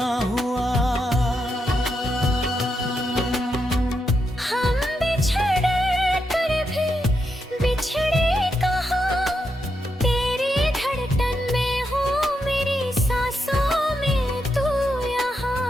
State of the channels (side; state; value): both; normal; correlation 0.83